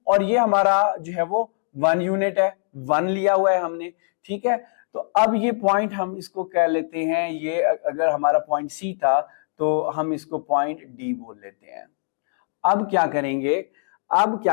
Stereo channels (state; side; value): silent; right; digital silence